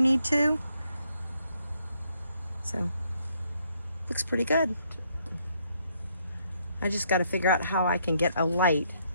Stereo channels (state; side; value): inverted; both; correlation -0.72